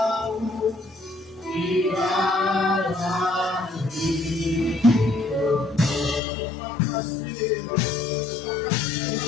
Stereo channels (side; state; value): right; drops out; at 6.2 s